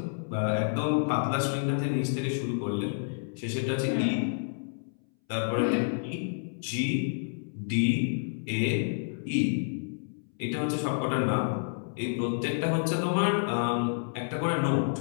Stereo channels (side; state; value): right; silent; 58 dB below the other